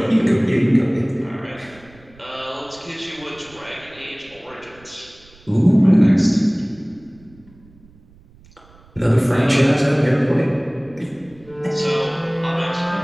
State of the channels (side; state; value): right; noise; rumble, 27 dB below the sound